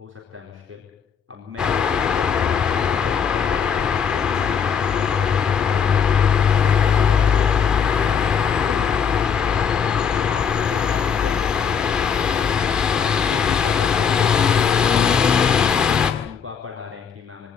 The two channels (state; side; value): quieter; right; 7.0 dB